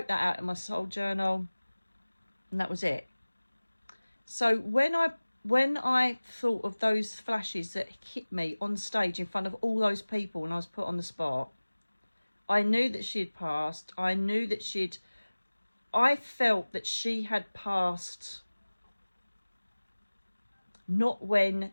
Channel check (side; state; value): both; inverted; correlation -1.00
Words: that out in my soul journal, and that was it. So when I thought of those flashes that hit me on stage in front of all those people and I was put on the spot, I knew that she had passed. I felt that she had passed not when